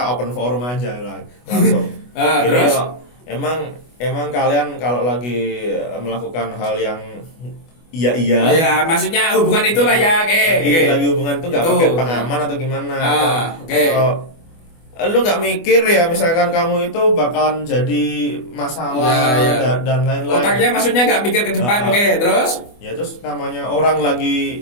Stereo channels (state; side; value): late; right; 24 ms